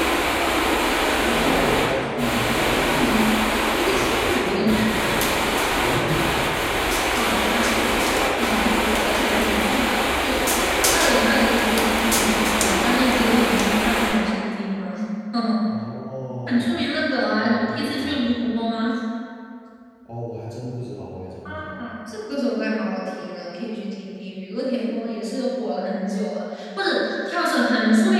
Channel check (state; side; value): identical; both; correlation 1.00